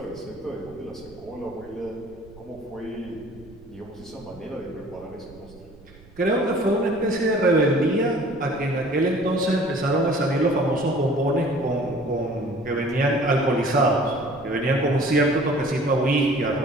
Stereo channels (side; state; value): right; noise; rumble, 22 dB below the sound